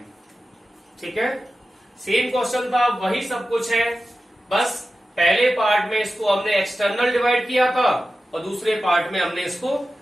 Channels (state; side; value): normal; both; correlation 0.93